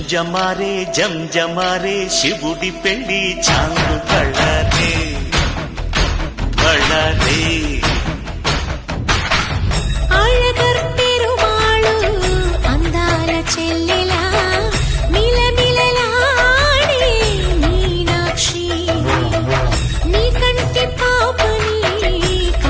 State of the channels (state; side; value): identical; both; correlation 1.00